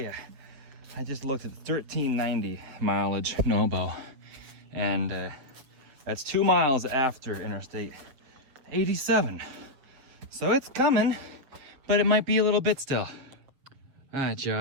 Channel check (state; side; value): late; left; 7.5 ms